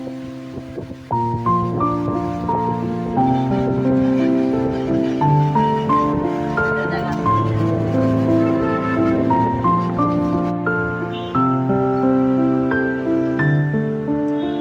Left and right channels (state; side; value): identical; both; correlation 1.00